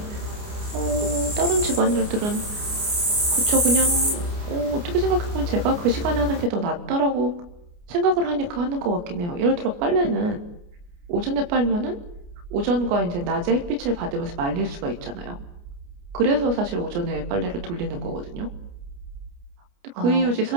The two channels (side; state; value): left; late; 29 ms